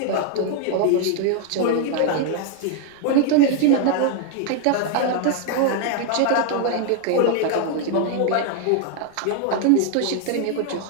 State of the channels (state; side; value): different; both; correlation 0.00